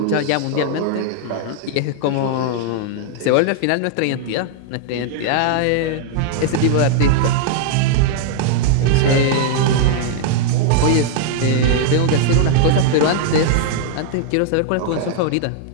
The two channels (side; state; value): both; different; correlation -0.01